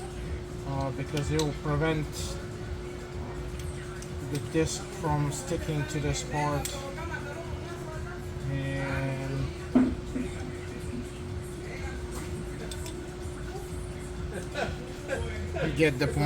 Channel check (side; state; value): both; identical; correlation 1.00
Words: because it will prevent the disc from sticking to this part. And you get the